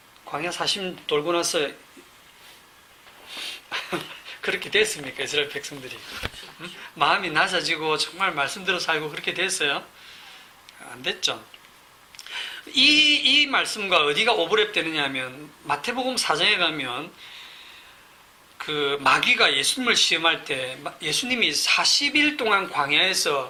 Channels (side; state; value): both; identical; correlation 1.00